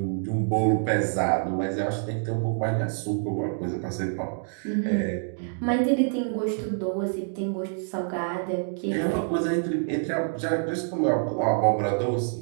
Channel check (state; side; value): silent; left; digital silence